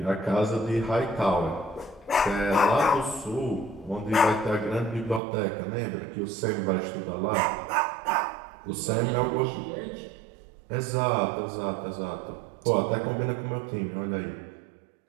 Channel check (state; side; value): drops out; left; at 5.2 s